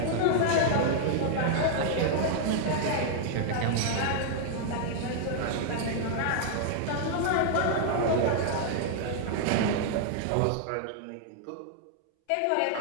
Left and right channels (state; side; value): different; both; correlation -0.01